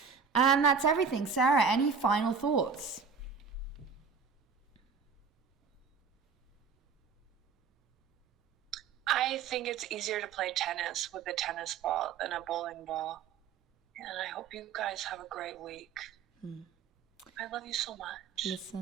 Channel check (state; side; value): quieter; left; 6.0 dB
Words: And that's everything. Sarah, any final thoughts? I think it's easier to play tennis with a tennis ball than a bowling ball. And I hope you guys have a great week. I love you so much.